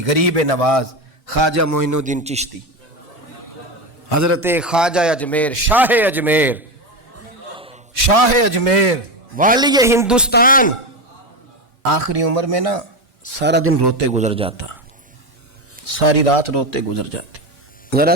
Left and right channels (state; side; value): normal; both; correlation 0.16